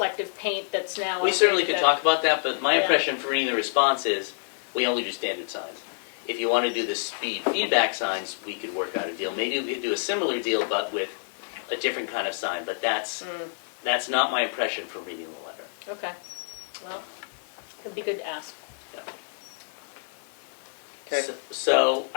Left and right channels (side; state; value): right; silent; 60 dB below the other